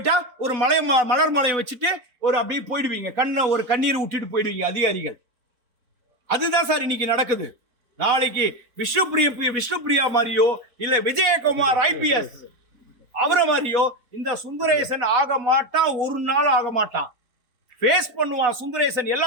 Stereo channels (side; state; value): left; late; 4.1 ms